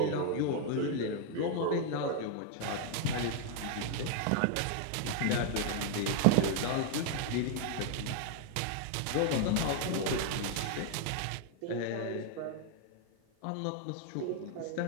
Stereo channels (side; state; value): both; different; correlation 0.00